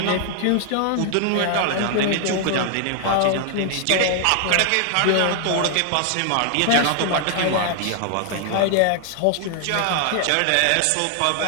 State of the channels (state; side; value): different; both; correlation 0.00